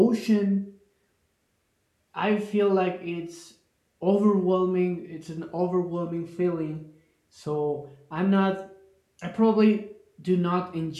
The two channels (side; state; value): both; identical; correlation 1.00